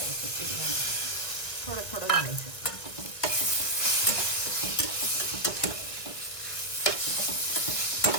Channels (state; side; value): late; right; 1.9 ms